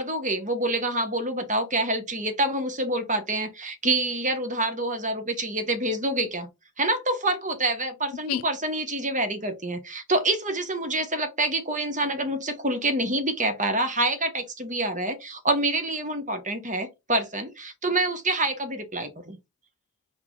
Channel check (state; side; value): normal; both; correlation -0.07